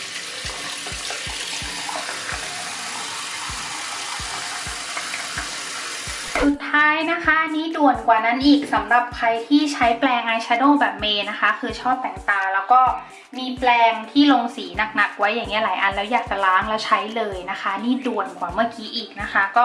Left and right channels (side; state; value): both; identical; correlation 1.00